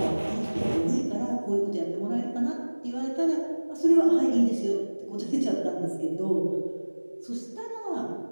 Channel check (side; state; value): both; inverted; correlation -1.00